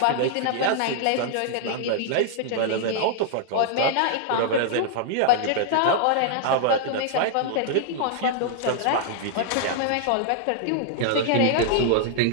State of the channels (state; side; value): different; both; correlation -0.01